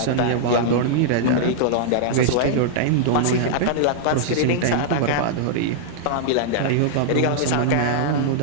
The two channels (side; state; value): both; different; correlation -0.01